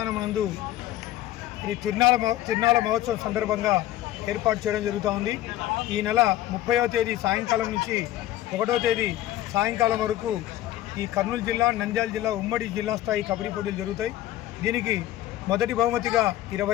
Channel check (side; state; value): right; quieter; 14.2 dB